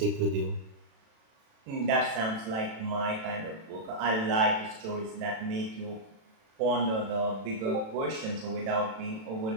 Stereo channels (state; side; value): late; left; 36 ms